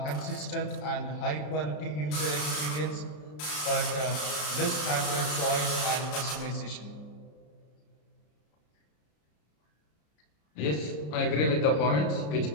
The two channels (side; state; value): right; late; 33 ms